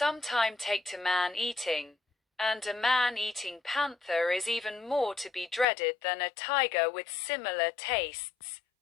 take to man-eating, and a man-eating panther is even more to be dreaded than a tiger with similar tastes,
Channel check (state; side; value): drops out; right; at 5.7 s